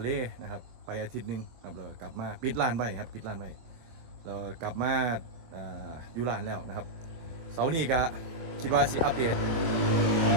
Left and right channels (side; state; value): left; late; 24 ms